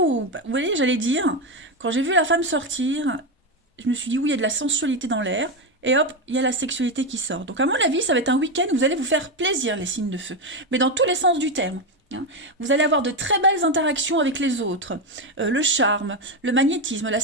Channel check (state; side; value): normal; both; correlation 0.10